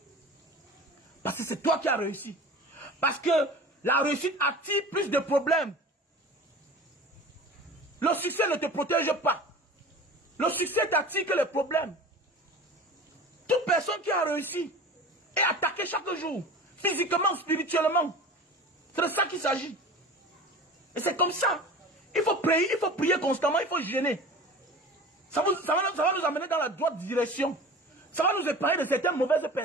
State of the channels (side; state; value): both; normal; correlation 0.37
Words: Parce que c'est toi qui as réussi. Parce que la réussite attire plus de problèmes. Le succès ne te protège pas. Le succès t'attire que les problèmes. Toute personne qui a réussi est attaquée chaque jour. Physiquement, spirituellement. C'est de ça qu'il s'agit. Et c'est comme ça. Il faut prier constamment, il faut gêner. Ça va nous amener dans la droite direction. Ça va nous épargner de certaines mauvaises